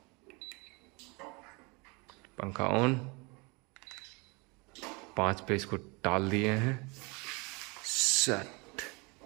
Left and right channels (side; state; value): left; quieter; 28.3 dB